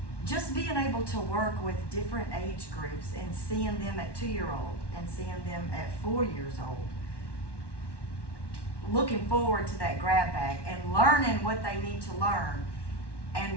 just being able to work with different age groups and seeing them at 2-year-old and seeing them at 4 years old, looking forward to that grab bag and learning what they need to learn,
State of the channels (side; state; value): right; late; 1.1 ms